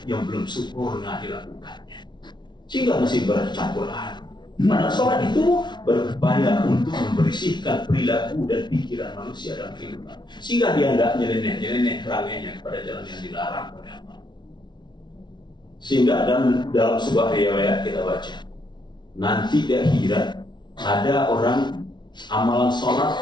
yang belum sempurna dilakukannya, sehingga masih bercampur aduk. Padahal sholat itu berupaya untuk membersihkan perilaku dan pikiran manusia dalam kehidupan, sehingga dia tidak nyeleneh perangainya kepada jalan yang dilarang oleh Allah. Sehingga dalam sebuah riwayat kita baca, nanti di akhirat ada orang amalan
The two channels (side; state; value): right; late; 0.21 ms